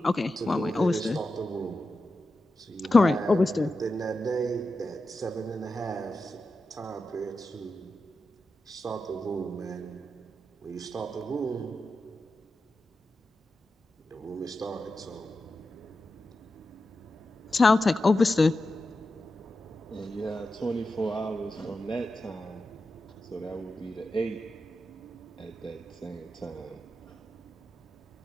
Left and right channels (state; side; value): normal; both; correlation 0.90